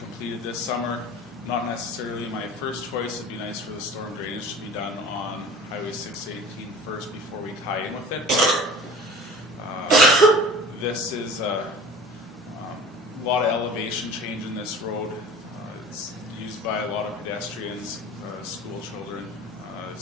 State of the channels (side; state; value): both; normal; correlation 0.41